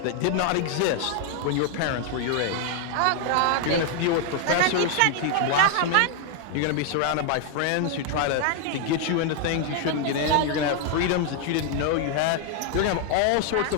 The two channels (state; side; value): different; both; correlation 0.00